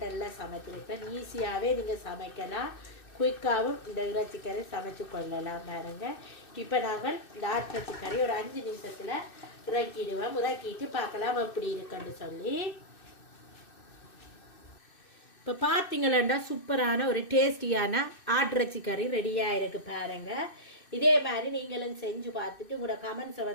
சமைச்சிருக்கேன். ஈஸியாகவே நீங்கள் சமைக்கலாம். குயிக்காகவும் இந்த இறைச்சி கறி சமைச்சு கொள்ளலாம் பாருங்க. இப்போ நாங்கள் இந்த ஆட்டிறைச்சி கறி ஒரு 5 நிமிஷத்தில் இறக்கிடுவோம். இறக்கிட்டு பார்க்கலாம் எப்படி இருக்குன்னு சொல்லி. இப்போ பார்த்தீங்களா சூப்பரான ஒரு டேஸ்டியான ஆட்டிறைச்சி கறி ரெடியாக இருக்குது பாருங்க. இதே மாதிரி நீங்களும் செஞ்சு பார்த்துட்டு உங்களோட கமெண்ட்ஸை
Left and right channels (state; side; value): late; right; 2.6 ms